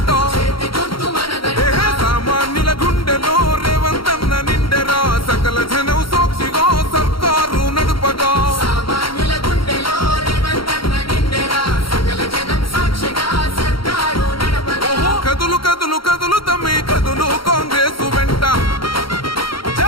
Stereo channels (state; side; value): late; right; 0.74 ms